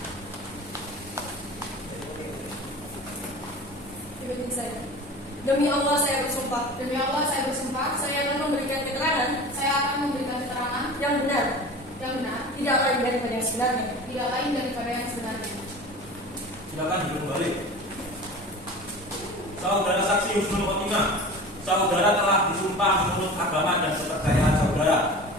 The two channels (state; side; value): normal; both; correlation 0.37